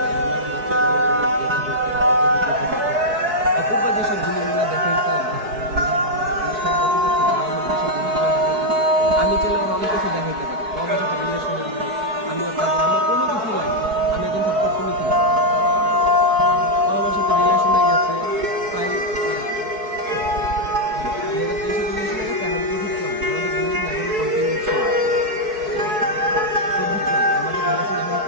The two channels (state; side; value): late; left; 4.6 ms